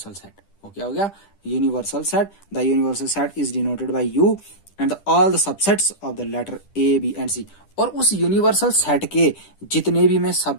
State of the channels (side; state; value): right; late; 10 ms